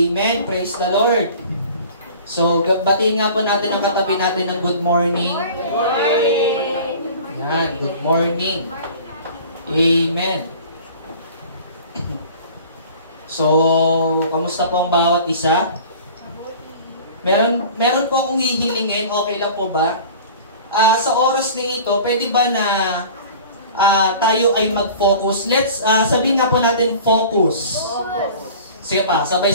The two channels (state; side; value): inverted; both; correlation -0.43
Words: Praise the Lord. So, batiin nga po natin ang katabi natin ng good morning. Good morning. Yan, good morning. Amen. So, kamusta po ang bawat isa? Meron po akong hihilingin, okay lang po ba? Sa oras na ito, pwede ba na tayo ay mag-focus? Let's, sabihin nga po natin, focus. Sige pa,